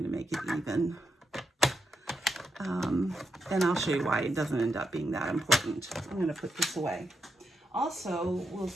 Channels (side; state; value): both; normal; correlation 0.83